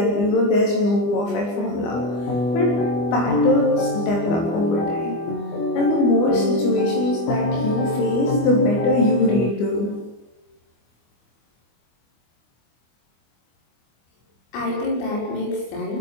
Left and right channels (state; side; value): late; right; 25 ms